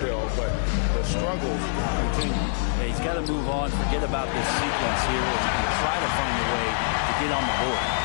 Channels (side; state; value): right; silent; 62 dB below the other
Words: but the struggles continue. Yeah, he's got to move on, forget about this sequence here, and try to find a way to get on the board.